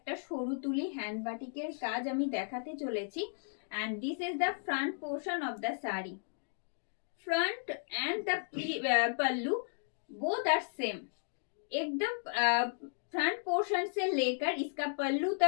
সরু তুলি হ্যান্ড বাটিকের কাজ আমি দেখাতে চলেছি। and this is the front portion of the saree. front and the pallu both are same. एकदम फ्रंट पोर्शन से लेकर इसका पल्लू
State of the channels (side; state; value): right; silent; digital silence